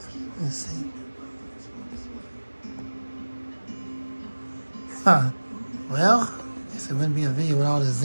Let's see. Huh. Well, I guess it wouldn't be a video with all the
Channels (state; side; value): inverted; both; correlation -1.00